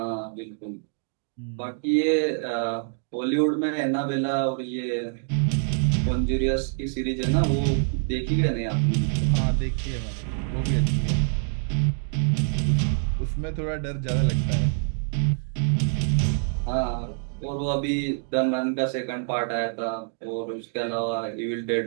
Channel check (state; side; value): silent; left; 61 dB below the other